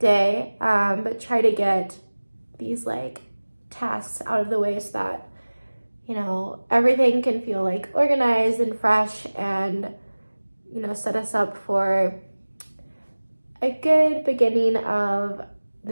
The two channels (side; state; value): both; inverted; correlation -1.00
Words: but try to get these like tasks out of the way so that, you know, everything can feel like organized and fresh, and, you know, set us up for a good beginning of